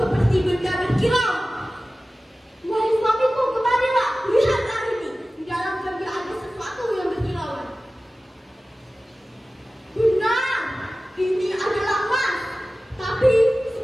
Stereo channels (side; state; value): both; normal; correlation 0.96